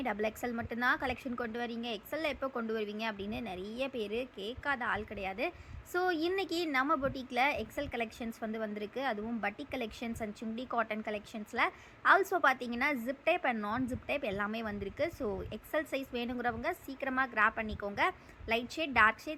டபுள் எக்ஸல் மட்டும்தான் கலெக்ஷன் கொண்டு வரீங்க, எக்ஸலில் எப்போ கொண்டு வருவீங்க அப்படின்னு நிறைய பேர் கேட்காத ஆள் கிடையாது. ஸோ இன்றைக்கி நம்ம பொட்டிக்கில் எக்ஸல் கலெக்ஷன்ஸ் வந்திருக்கு. அதுவும் பட்டிக் கலெக்ஷன்ஸ் அண்ட் சுண்டி காட்டன் கலெக்ஷன்ஸில் ஆல்சோ பார்த்தீங்கன்னா ஜிப் டைப் அண்ட் நான் ஜிப் டைப் எல்லாமே வந்திருக்கு. ஸோ எக்ஸல் சைஸ் வேணுங்கிறவங்க சீக்கிரமாக கிராப் பண்ணிக்கோங்க. லைட் ஷேட், டார்க்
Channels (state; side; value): identical; both; correlation 1.00